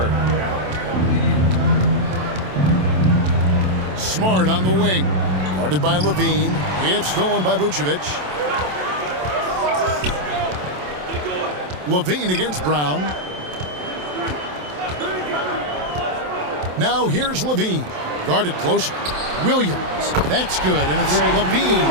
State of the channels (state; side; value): late; left; 27 ms